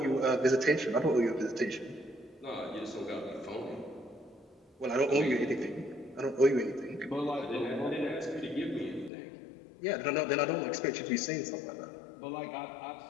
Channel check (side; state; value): right; drops out; at 9.1 s